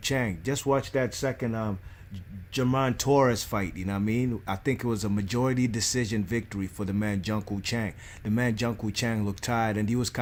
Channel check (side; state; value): both; identical; correlation 1.00